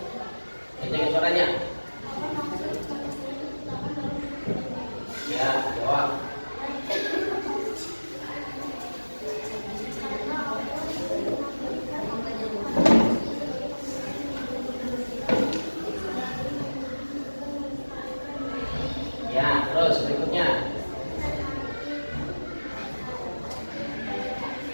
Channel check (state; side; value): inverted; both; correlation -1.00